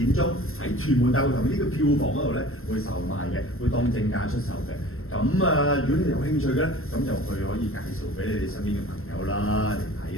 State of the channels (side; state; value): right; late; 0.62 ms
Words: 鐘喺屯門大會堂呢個票房嗰度咧會售賣嘅，會當正價出售嘅。咁如果你有興趣嘅咧，咁就可以介紹俾你哋身邊嘅朋友啦嚟